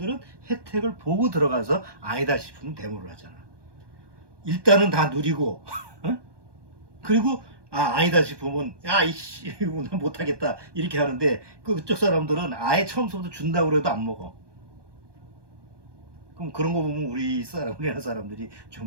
혜택을 보고 들어가서 아니다 싶으면 데모를 하잖아. 일단은 다 누리고 그리고 아니다 싶으면 이씨 난 못하겠다 이렇게 하는데 그쪽 사람들은 아예 처음부터 준다고 해도 안 먹어. 그럼 그런 거 보면 우리나라 사람들이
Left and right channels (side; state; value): left; late; 1.2 ms